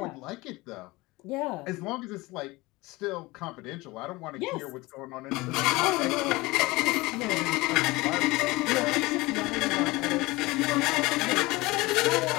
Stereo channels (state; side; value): quieter; right; 21.7 dB